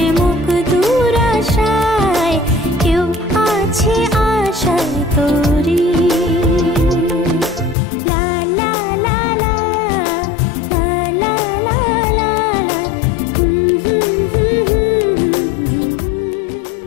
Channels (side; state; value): right; drops out; at 7.8 s